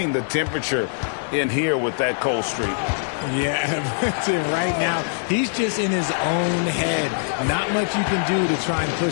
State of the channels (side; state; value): right; silent; digital silence